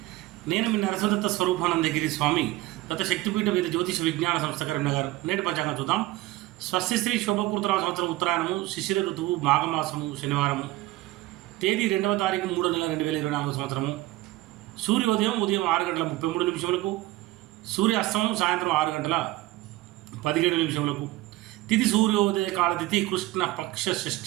నేను మీ నరసింహదత్త స్వరూపానందగిరి స్వామి దత్త శక్తిపీఠ వేద జ్యోతిష విజ్ఞాన సంస్థ కరీంనగర్. నేటి పంచాంగం చూద్దాం. స్వస్తిశ్రీ శోభకృతరామ సంవత్సరం ఉత్తరాయణము, శిశిర ఋతువు, మాఘమాసము, శనివారము. తేదీ 2వ తారీఖు 3వ నెల 2024 సంవత్సరము. సూర్యోదయం ఉదయం 6 గంటల 33 నిమిషములకు, సూర్య అస్తమం సాయంత్రం 6 గంటల 17 నిమిషములకు. తిథి సూర్యోదయ కాల తిథి కృష్ణ పక్ష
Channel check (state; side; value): quieter; left; 17.5 dB